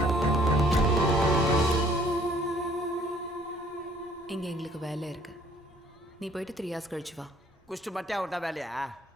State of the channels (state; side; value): normal; both; correlation 0.60